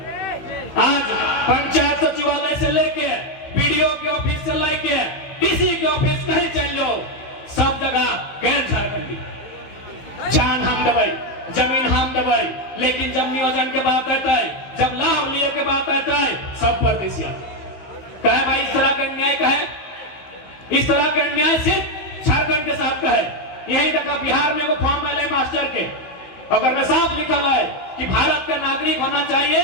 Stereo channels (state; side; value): late; right; 15 ms